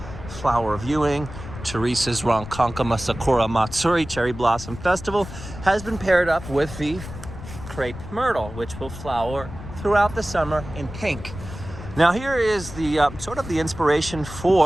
flower viewing. Theresa's Ronkonkoma Sakura Matsuri Cherry Blossom Festival has been paired up with the crepe myrtle, which will flower throughout the summer in pink. Now here is the sort of the inspiration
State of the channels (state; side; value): noise; left; rumble, 12 dB below the sound